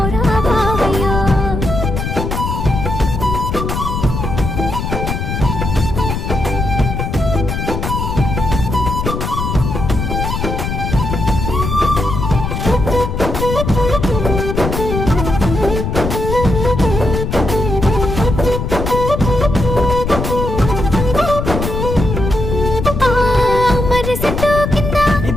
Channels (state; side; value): noise; left; rumble, 3 dB below the sound